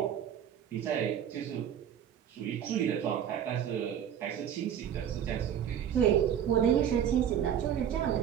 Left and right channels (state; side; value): quieter; left; 9.3 dB